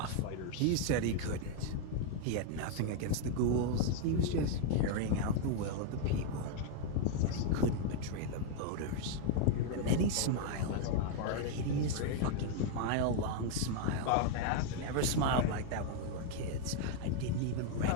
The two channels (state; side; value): different; both; correlation 0.00